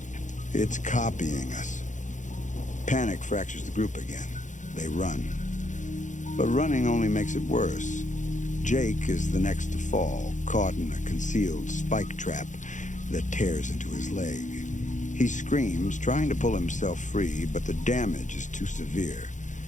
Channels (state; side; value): late; right; 0.36 ms